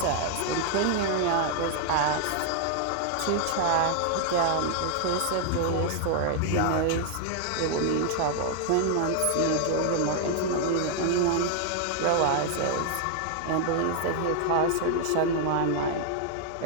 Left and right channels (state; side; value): different; both; correlation 0.00